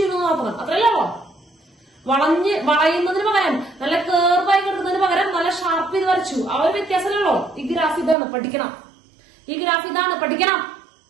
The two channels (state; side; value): drops out; left; at 8.2 s